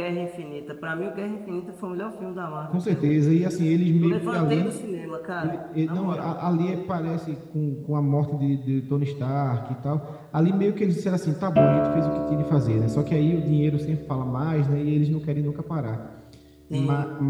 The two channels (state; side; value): identical; both; correlation 1.00